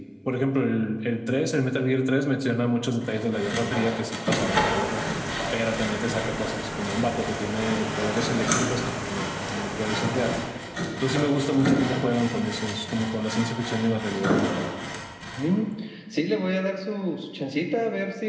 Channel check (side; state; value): both; identical; correlation 1.00